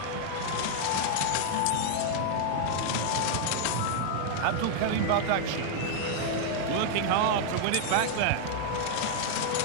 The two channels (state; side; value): different; both; correlation 0.00